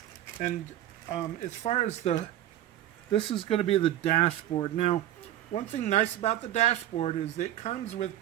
And as far as this is going to be the dashboard. Now, one thing nice about the dashboard is it comes with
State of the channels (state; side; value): quieter; left; 12.8 dB